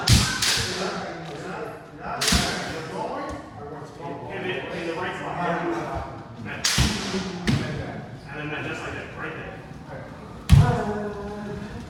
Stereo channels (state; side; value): identical; both; correlation 1.00